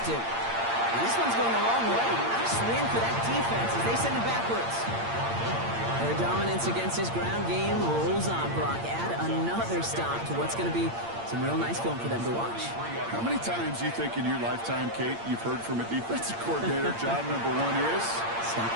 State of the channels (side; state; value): left; late; 8.7 ms